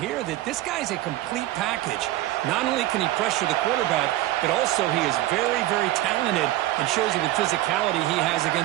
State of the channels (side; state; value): left; quieter; 15.7 dB